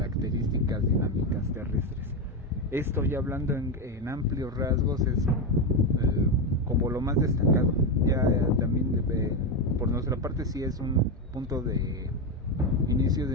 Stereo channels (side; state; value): both; normal; correlation 0.11